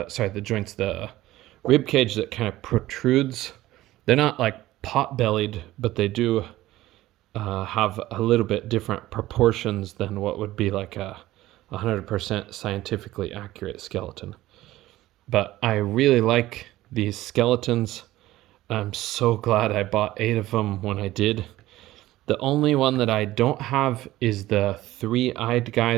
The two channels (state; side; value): quieter; left; 16.1 dB